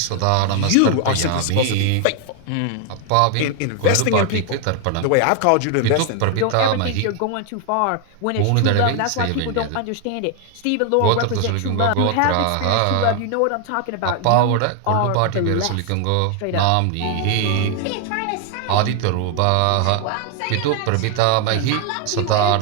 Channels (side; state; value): both; different; correlation 0.00